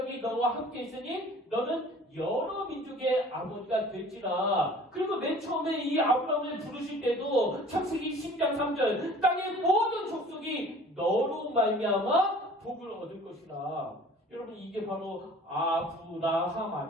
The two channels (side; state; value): both; normal; correlation 0.48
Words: 너와 함께 있으니 너는 여러 민족의 아버지가 될지라. 그리고 맨 처음에 이 아브라함을 부르실 때도 창세기 10장 3절, 땅의 모든 족속이 너로 말미암아 복을 얻을 것이라. 여러분, 이게 바로 아브라함